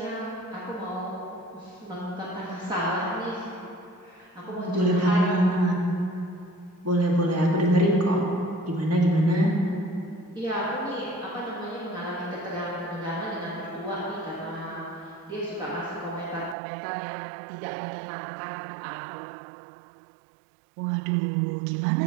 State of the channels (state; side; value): drops out; left; at 16.6 s